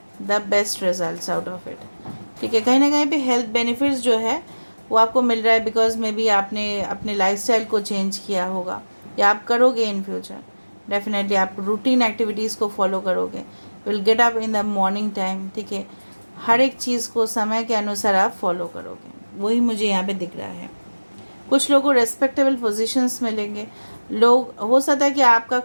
the best results out of it, ठीक है। कहीं ना कहीं पे हेल्थ बेनिफिट्स जो है वो आपको मिल रहा है बिकॉज मे बी आपने अपने लाइफस्टाइल को चेंज किया होगा या आप करोगे इन फ्यूचर। डेफिनेटली आप रूटीन एक्टिविटीज़ को फॉलो करोगे, will get up in the morning time, ठीक है। हर एक चीज़ को समय के अनुसार आप फॉलो करोगे, वही मुझे यहाँ पे दिख रहा है। कुछ लोगों को रेस्पेक्टेबल पोजीशंस मिलेंगे। लोग हो सकता है कि आपका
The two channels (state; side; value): inverted; both; correlation -1.00